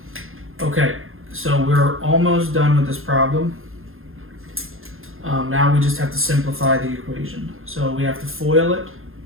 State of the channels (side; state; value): left; late; 0.60 ms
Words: Okay, so we're almost done with this problem. Now we just have to simplify the equation. So we have to FOIL it.